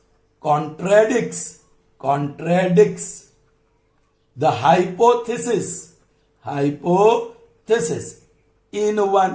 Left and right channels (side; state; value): both; identical; correlation 1.00